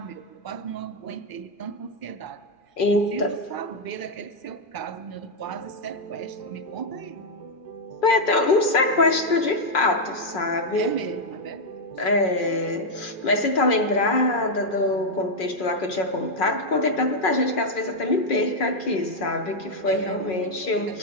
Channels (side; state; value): right; late; 2.4 ms